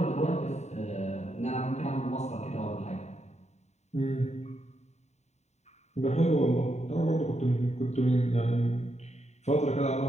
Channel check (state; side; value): late; right; 0.32 ms